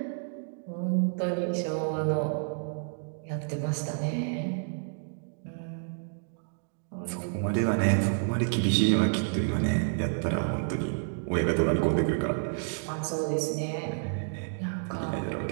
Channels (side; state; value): left; silent; digital silence